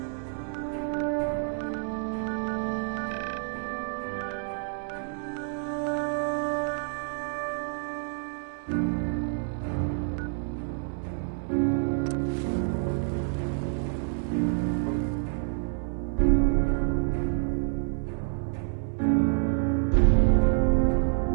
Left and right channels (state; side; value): silent; left; 58 dB below the other